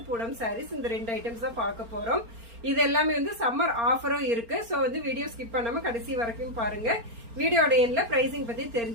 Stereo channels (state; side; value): late; left; 4.3 ms